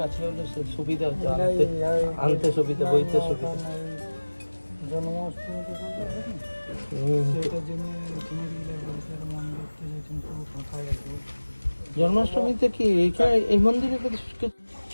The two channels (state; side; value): inverted; both; correlation -1.00